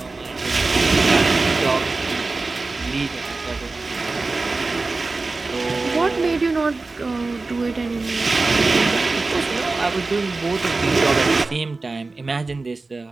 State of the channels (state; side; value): quieter; left; 3.6 dB